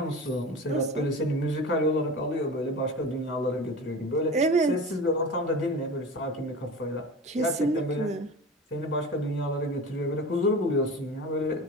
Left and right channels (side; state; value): both; normal; correlation 0.32